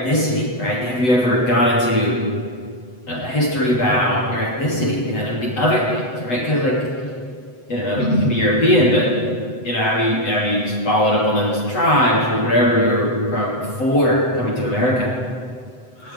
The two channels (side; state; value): right; late; 7.9 ms